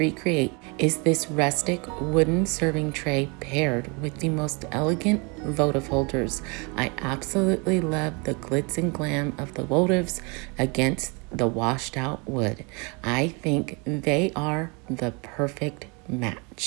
is this rustic wooden serving tray paired with the most elegant votive holders. I absolutely love the glitz and glam of the votives against the washed out wood. I think they are the perfect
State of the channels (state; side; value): quieter; left; 31.2 dB